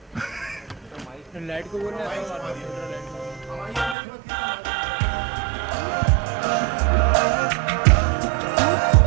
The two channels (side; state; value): left; drops out; at 4.0 s